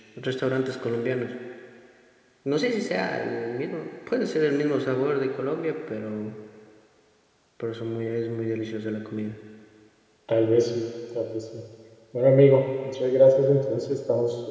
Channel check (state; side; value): identical; both; correlation 1.00